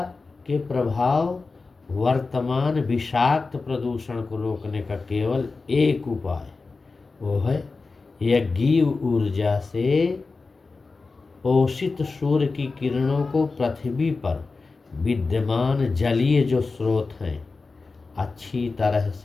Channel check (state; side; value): quieter; right; 4.0 dB